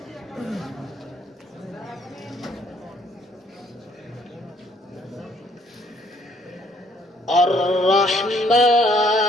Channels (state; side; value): normal; both; correlation 0.64